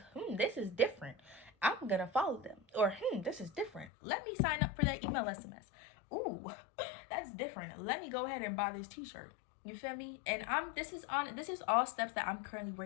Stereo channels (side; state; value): right; drops out; at 3.9 s